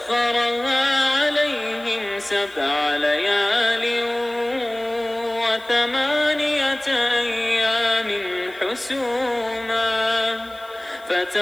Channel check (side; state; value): left; noise; hiss, 27 dB below the sound